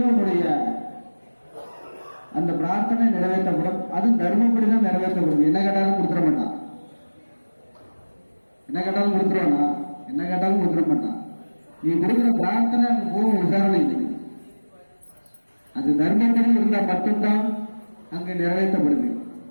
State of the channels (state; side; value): inverted; both; correlation -1.00